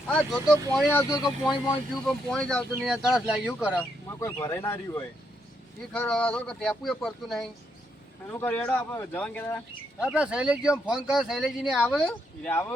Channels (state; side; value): normal; both; correlation 0.77